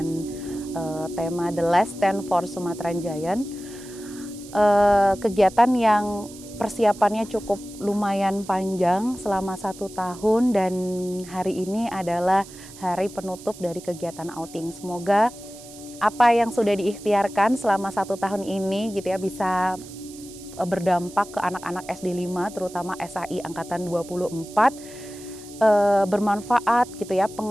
tema The Last Stand for Sumatran Giant. Kegiatan yang persiapannya cukup lumayan panjang selama 1 tahun dan hari ini adalah hari penutup dari kegiatan outing. Semoga apa yang sudah diikhtiarkan selama 1 tahun ini gitu ya bisa berdampak ke anak-anak SD 5 terutama SAI angkatan 24 bermanfaat gitu ya,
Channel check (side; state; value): right; noise; hiss, 18 dB below the sound